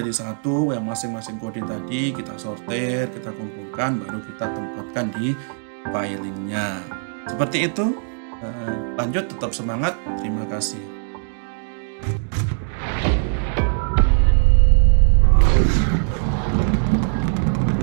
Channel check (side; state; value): left; silent; digital silence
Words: satu, yang masing-masing kode tadi kita sortir, kita kumpulkan, baru kita tempatkan di filingnya. Seperti itu. Lanjut, tetap semangat. Terima kasih.